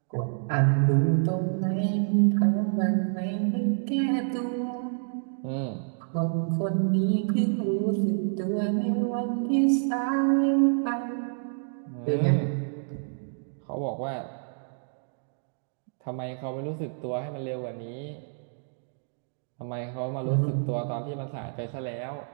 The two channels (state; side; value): silent; left; digital silence